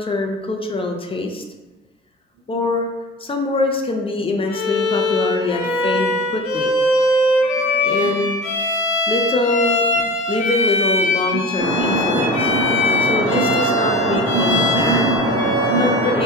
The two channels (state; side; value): normal; both; correlation 0.32